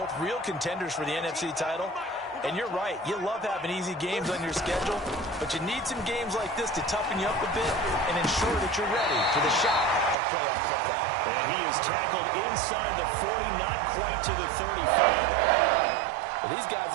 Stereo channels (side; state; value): left; drops out; at 10.2 s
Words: real contenders for the NFC title. And you're right, you love having easy games on your schedule, but you need some games like this to toughen you up a bit and ensure that you're ready for the shot of playoff football. And he is tackled inside the 40, not quite to the 35. Well, these guys